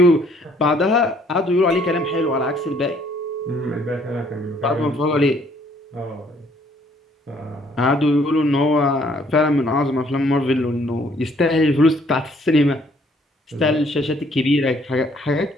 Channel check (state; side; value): normal; both; correlation 0.63